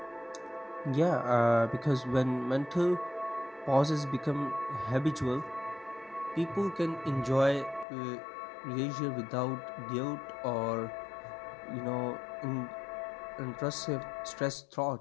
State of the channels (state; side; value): drops out; right; at 7.9 s